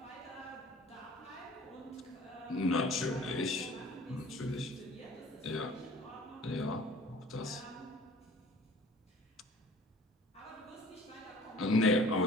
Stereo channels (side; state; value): both; normal; correlation 0.48